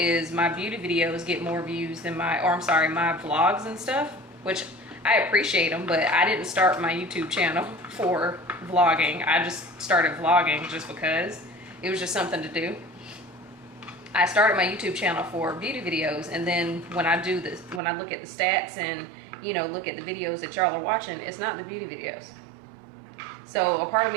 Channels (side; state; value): left; drops out; at 17.8 s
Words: my beauty videos get more views than my vlogs and stuff, which I appreciate them, but I didn't start my YouTube channel for vlogging. I just started vlogging just because it was just something to do. I started my YouTube channel for beauty videos, and then when I do this, when I look at the stats and, you know, look at the videos that y'all are watching, it's not the beauty videos. So a part of